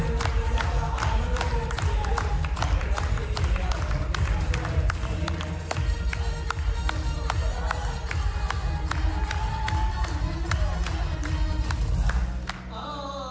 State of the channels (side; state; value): both; identical; correlation 1.00